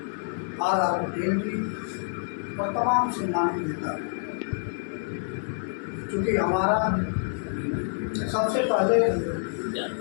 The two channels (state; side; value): silent; right; 60 dB below the other